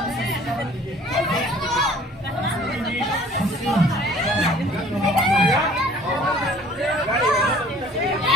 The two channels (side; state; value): both; normal; correlation 0.52